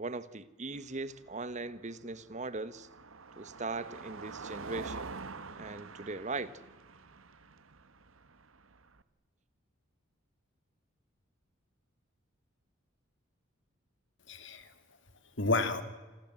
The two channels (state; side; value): normal; both; correlation 0.01